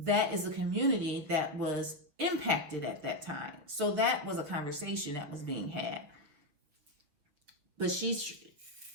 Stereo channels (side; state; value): left; late; 6.9 ms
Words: is a community that was impacted at that time. So that was a conversation that was being had. But she's